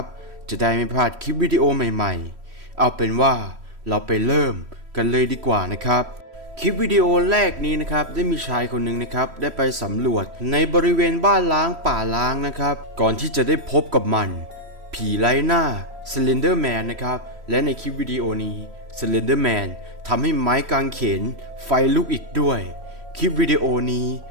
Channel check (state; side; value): late; left; 3.1 ms